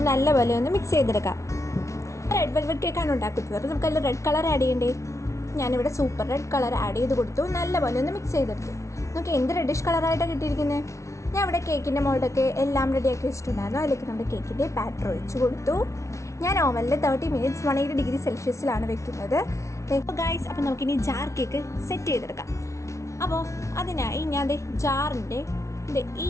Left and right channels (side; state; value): right; late; 0.14 ms